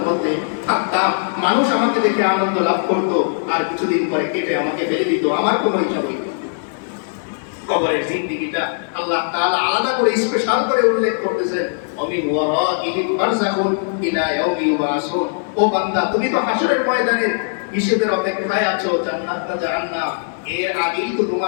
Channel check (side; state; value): right; silent; 63 dB below the other